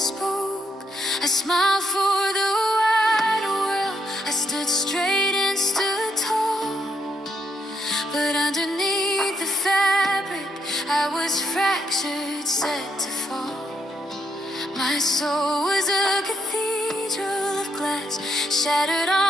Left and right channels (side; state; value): both; normal; correlation 0.76